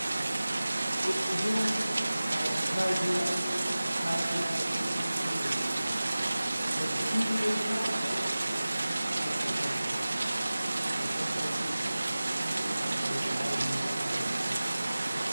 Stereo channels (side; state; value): both; inverted; correlation -0.98